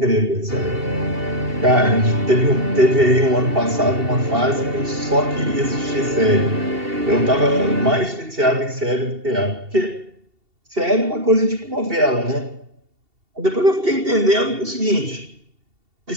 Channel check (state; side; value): late; left; 2.7 ms